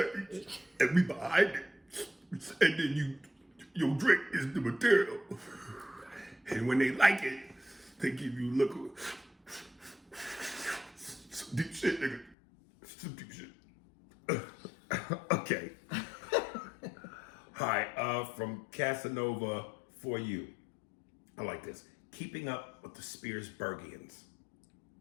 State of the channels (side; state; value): right; drops out; at 12.4 s